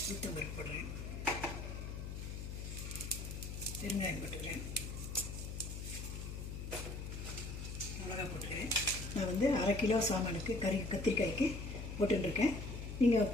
உளுத்தம்பருப்பு போடுறேன், பெருங்காயம் போட்டுக்கிறேன், மிளகா போட்டுக்கிறேன். நான் 1/2 கிலோ சாமானுக்கு கத்திரிக்காய்க்கு போட்டுருக்கேன். நீங்கள்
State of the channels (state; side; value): noise; left; hum, 6 dB below the sound